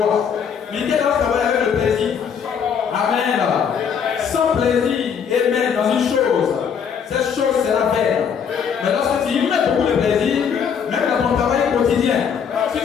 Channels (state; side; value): quieter; right; 7.2 dB